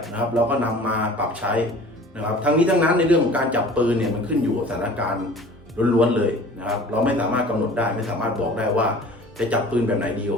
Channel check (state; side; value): normal; both; correlation 0.45